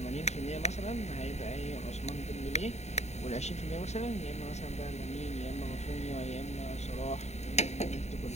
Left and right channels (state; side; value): late; right; 0.32 ms